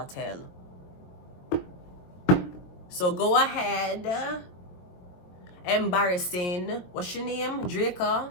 hell. So go ahead. Embarrassing. What's your name? Draco.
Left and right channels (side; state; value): right; late; 22 ms